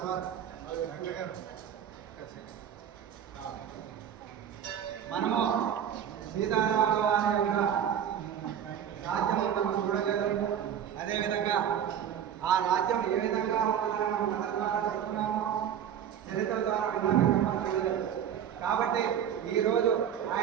మనము సీతారాముల వారి యొక్క రాజ్యము మనం చూడలేదు. అదేవిధంగా ఆ రాజ్యం ఏ విధంగా ఉంటుందని మనం కథ ద్వారా చెప్తున్నాము, చరిత్ర ద్వారా విన్నాక మనం చూడలేదు. కాబట్టి ఈరోజు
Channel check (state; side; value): quieter; left; 9.2 dB